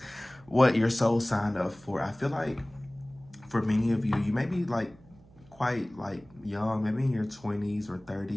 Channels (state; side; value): noise; right; hum, 25 dB below the sound